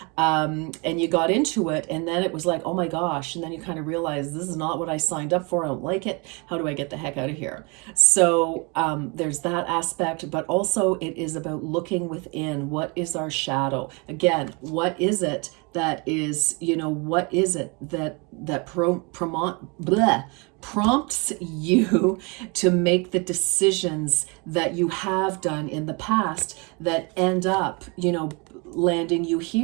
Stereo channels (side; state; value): left; quieter; 30.3 dB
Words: And you got into it, and then it was like, oh my gosh, and then you kind of realize this is not what I signed up for. I don't like it. How do I get the heck out of here? So there's that aspect, but also it is about looking within. What is our shadow? Again, what is it that is, you know, what is it that prompts you to make the decisions that you have done in the past that end up, you know, landing you